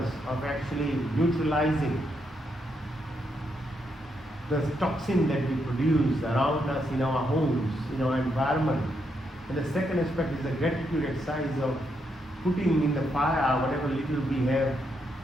of actually neutralizing the toxin that we produce around us in our homes, in our environment. And the second aspect is the gratitude exercise of putting in the fire whatever little we have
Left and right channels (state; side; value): normal; both; correlation 0.79